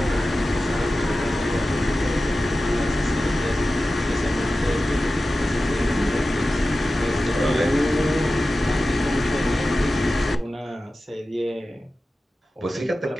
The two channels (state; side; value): normal; both; correlation 0.94